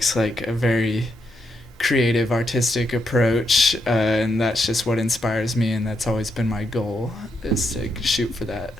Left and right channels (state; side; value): normal; both; correlation 0.81